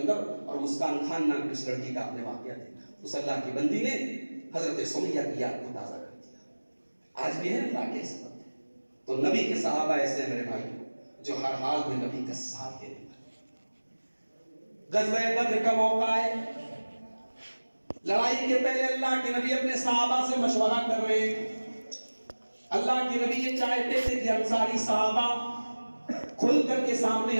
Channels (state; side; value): inverted; both; correlation -1.00